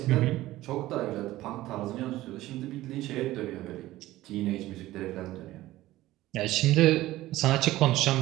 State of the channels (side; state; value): left; quieter; 16.3 dB